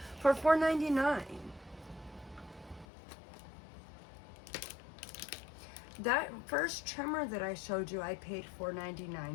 for $4.99. That first trimmer that I showed you, I paid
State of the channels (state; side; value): drops out; right; at 2.9 s